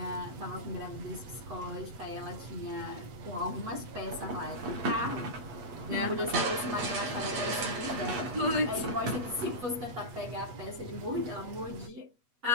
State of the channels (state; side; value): late; left; 8.2 ms